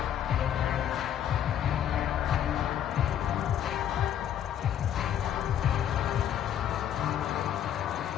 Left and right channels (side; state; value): right; quieter; 10.1 dB